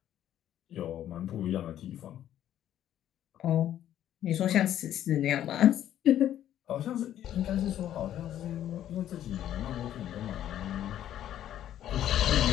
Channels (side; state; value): right; quieter; 11.5 dB